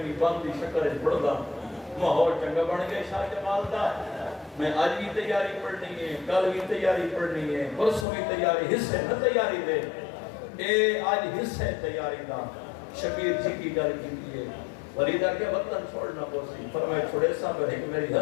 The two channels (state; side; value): drops out; right; at 8.1 s